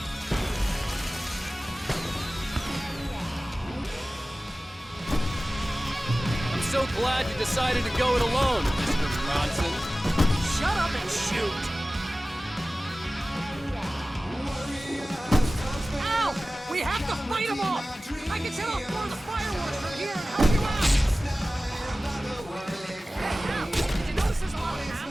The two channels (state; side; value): normal; both; correlation 0.97